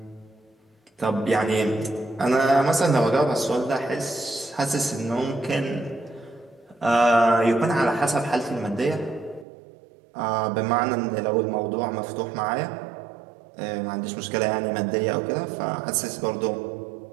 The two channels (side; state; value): left; drops out; at 9.5 s